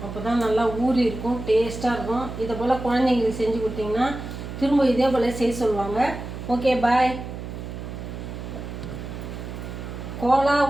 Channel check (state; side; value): noise; right; hum, 8 dB below the sound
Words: அப்போ தான் நல்லா ஊறி இருக்கும், டேஸ்ட்டாக இருக்கும். இதை போல் குழந்தைங்களுக்கு செஞ்சு கொடுத்தீங்கன்னா திரும்ப இதே போல் செய்ய சொல்லுவாங்க. ஓகே, பாய். கோலா